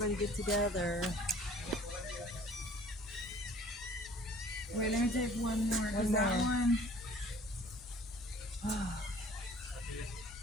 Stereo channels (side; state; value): both; normal; correlation 0.51